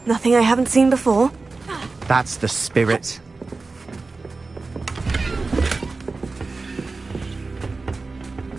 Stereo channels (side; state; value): left; quieter; 3.8 dB